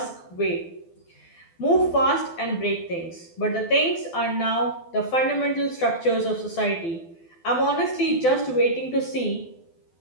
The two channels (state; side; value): late; right; 12 ms